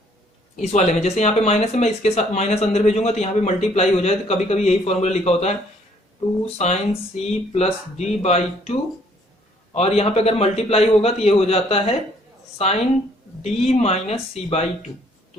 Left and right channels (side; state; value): both; normal; correlation 0.63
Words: इस वाले में जैसे यहाँ पे माइनस है, मैं इसके साथ माइनस अंदर भेजूंगा तो यहाँ पे मल्टीप्लाई हो जाए, तो कभी कभी यही फॉर्मूला लिखा होता है 2 sine c plus d by 2, और यहाँ पे अगर मल्टीप्लाई होगा तो ये हो जाता है sine d minus C by 2।